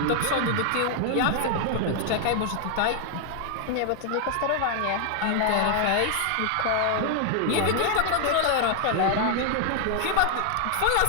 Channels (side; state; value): both; different; correlation 0.00